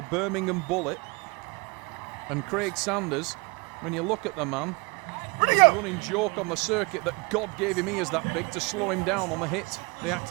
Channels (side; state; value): left; quieter; 28.6 dB